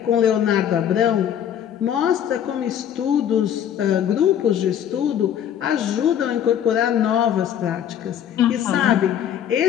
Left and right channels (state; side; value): quieter; right; 9.7 dB